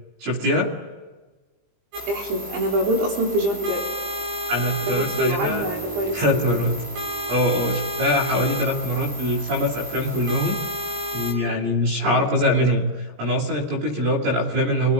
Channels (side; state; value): left; late; 20 ms